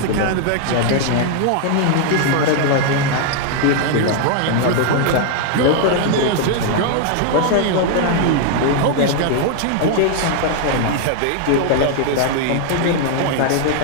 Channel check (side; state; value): both; different; correlation 0.00